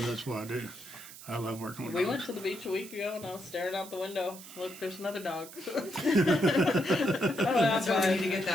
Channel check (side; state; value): right; noise; hiss, 16 dB below the sound